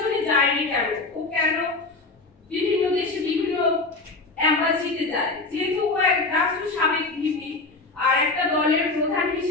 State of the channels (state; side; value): quieter; right; 3.5 dB